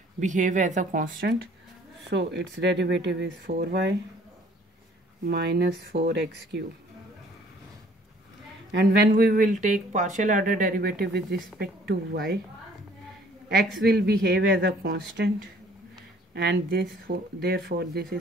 behave as a constant. So its derivative is 4y minus 4x cube. And when we will take partial order derivative with respect to y, x will behave as a constant, and therefore this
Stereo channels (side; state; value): both; normal; correlation 0.57